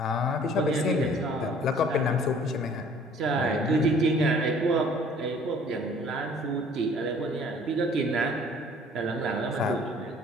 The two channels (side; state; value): both; normal; correlation 0.54